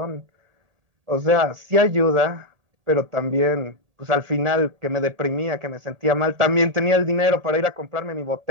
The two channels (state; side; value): late; left; 1.8 ms